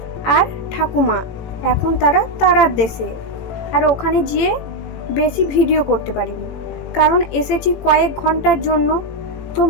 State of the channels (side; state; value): right; late; 18 ms